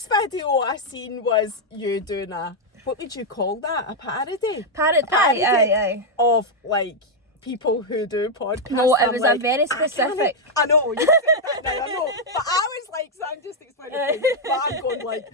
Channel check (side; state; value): both; normal; correlation -0.01